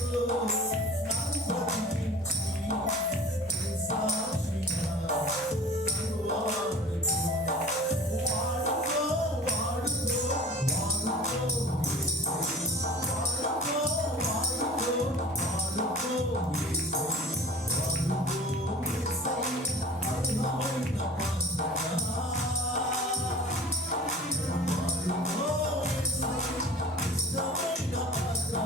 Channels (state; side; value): normal; both; correlation 0.43